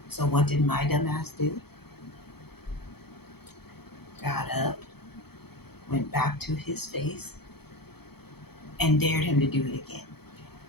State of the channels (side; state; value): right; late; 0.96 ms